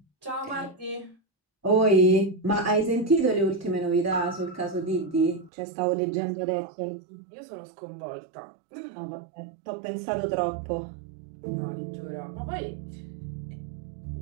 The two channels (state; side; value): drops out; left; at 5.5 s